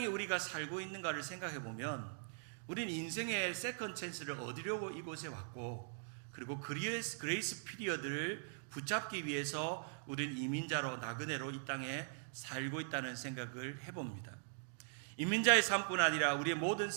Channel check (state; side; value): silent; left; digital silence